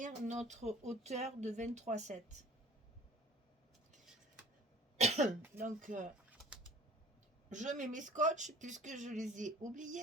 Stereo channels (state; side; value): normal; both; correlation 0.47